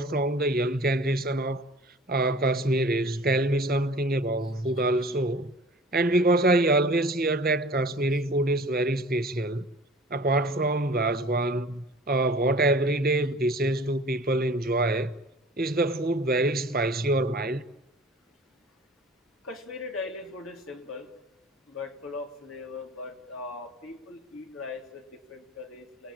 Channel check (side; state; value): both; normal; correlation 0.46